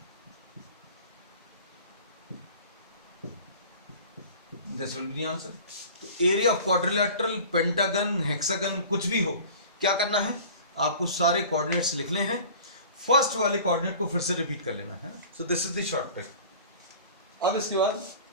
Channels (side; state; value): both; inverted; correlation -0.42